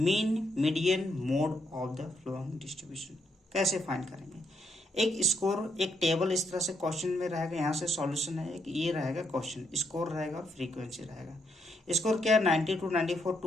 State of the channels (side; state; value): both; normal; correlation 0.76